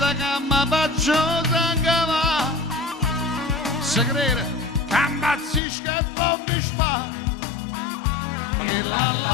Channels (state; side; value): drops out; right; at 5.6 s